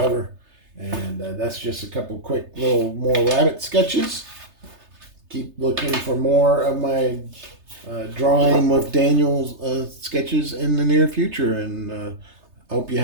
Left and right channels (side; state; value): left; late; 3.3 ms